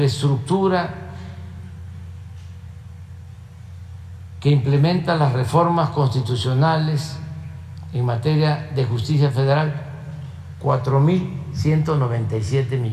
que implementa las reformas constitucionales en materia de justicia federal, 4.197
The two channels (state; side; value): identical; both; correlation 1.00